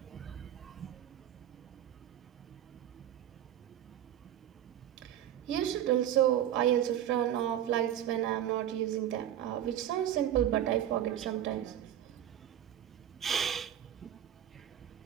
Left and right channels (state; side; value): quieter; left; 11.1 dB